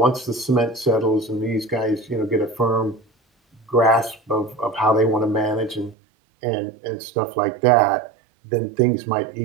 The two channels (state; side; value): drops out; left; at 6.0 s